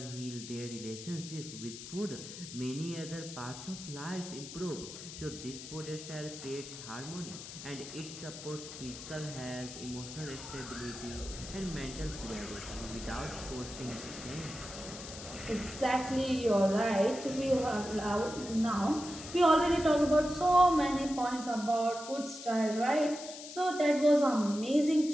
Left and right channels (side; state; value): left; noise; hiss, 12 dB below the sound